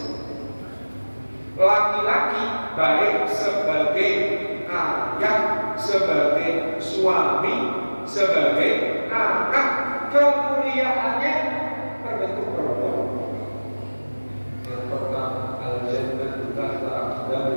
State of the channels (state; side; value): inverted; both; correlation -1.00